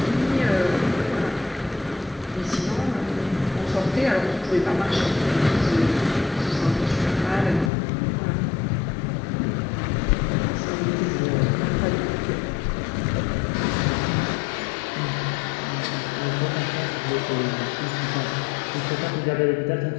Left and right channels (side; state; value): right; drops out; at 7.7 s